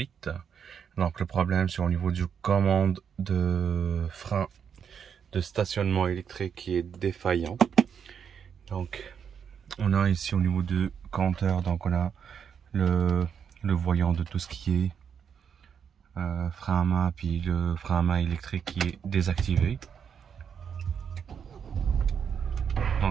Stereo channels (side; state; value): left; quieter; 7.4 dB